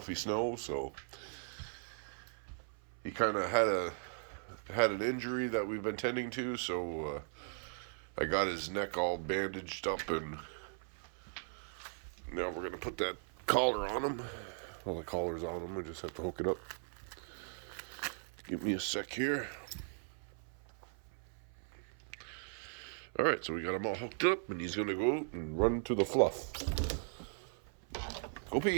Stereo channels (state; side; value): silent; left; 52 dB below the other